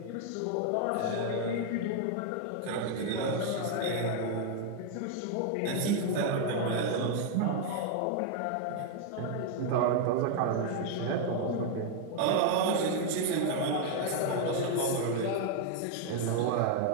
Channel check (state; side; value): different; both; correlation 0.00